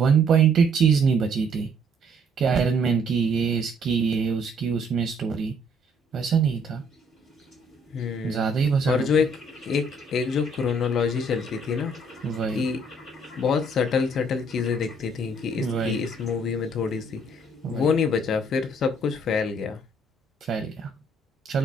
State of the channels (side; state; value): both; normal; correlation 0.64